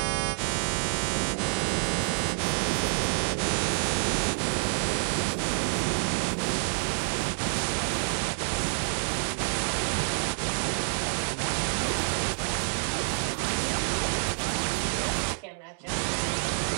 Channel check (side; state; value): left; silent; 59 dB below the other